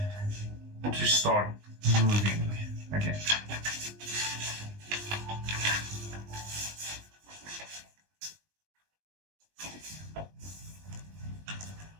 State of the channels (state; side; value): late; left; 19 ms